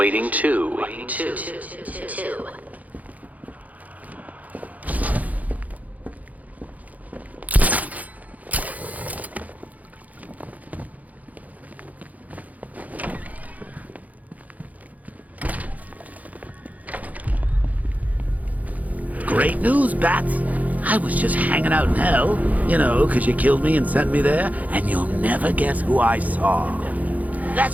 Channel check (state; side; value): late; left; 0.076 ms